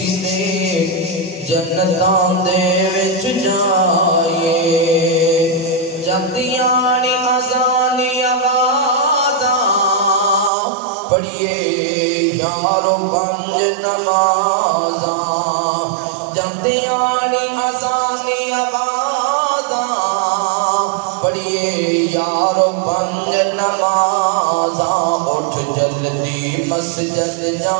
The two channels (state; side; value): drops out; left; at 10.5 s